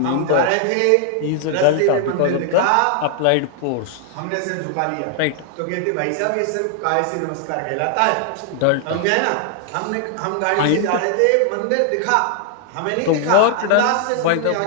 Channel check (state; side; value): different; both; correlation 0.00